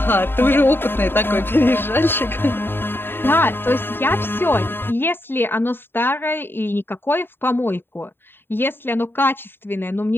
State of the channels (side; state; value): right; late; 0.10 ms